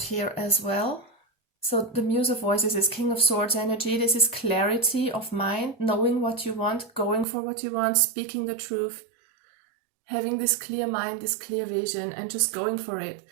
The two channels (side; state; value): left; drops out; at 7.2 s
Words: as well. So the Muse of Voices is King of Swords energy. This is clarity of mind, knowing what you want, going for what you want, speaking the truth, having this clear mind, this clear vision, and just going for it.